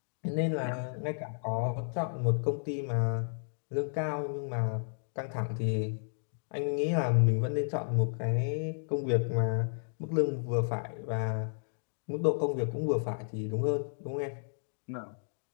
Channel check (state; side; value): silent; right; digital silence